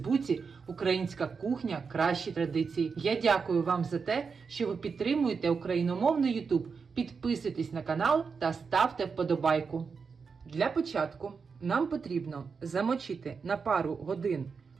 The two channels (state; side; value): quieter; left; 5.4 dB